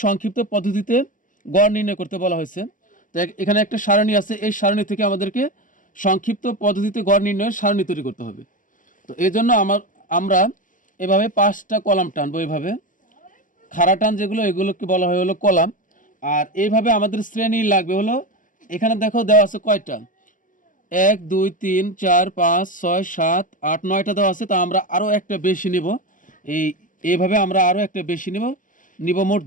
সংক্ষিপ্ত পদ্ধতিতে গড় নির্ণয় করতে বলা হয়েছে। তো এখানে একটা সারণী আছে, এই সারণী থেকে আমাদেরকে সংক্ষিপ্ত পদ্ধতিতে গড় নির্ণয়ের সারণী তৈরি করতে হবে। তো এই জন্য আমরা এভাবে 5টা কলাম টানবো। এভাবে খাড়া টান যেগুলো, এগুলোকে বলা হয় হলো কলাম। আর এইভাবে আমাদের শ্রেণী লাগবে হলো, এখানে দেখো দেওয়া আছে কয়টা, 1 2 3 4 5 6 7 8 9টা দেওয়া আছে। তা আমরা আরও একটা বেশি নিব। এইভাবে আমরা আরও একটা বেশি নিব মোট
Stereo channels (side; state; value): right; late; 0.38 ms